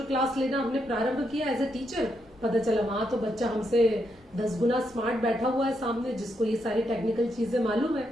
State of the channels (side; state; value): both; normal; correlation 0.80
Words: क्लास लेना हमने प्रारंभ किया एज ए टीचर। पता चला वहां तो बच्चा हमसे 10 गुना स्मार्ट बैठा हुआ है सामने, जिसको ये सारी टेक्निकल चीजें मालूम है।